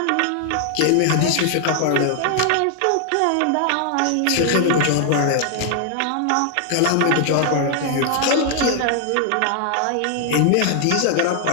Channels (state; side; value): different; both; correlation 0.00